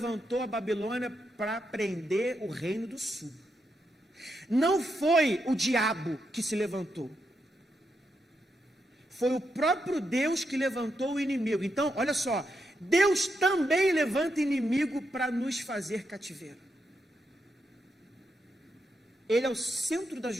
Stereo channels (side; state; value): both; normal; correlation 0.83